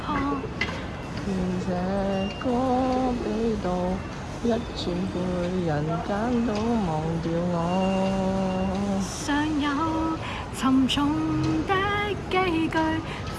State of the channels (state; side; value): identical; both; correlation 1.00